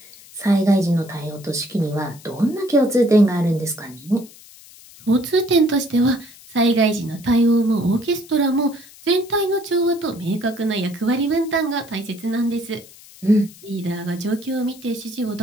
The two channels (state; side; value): noise; left; hiss, 22 dB below the sound